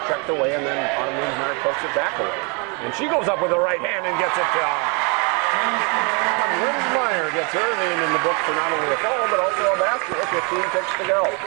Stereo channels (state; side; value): quieter; left; 33.7 dB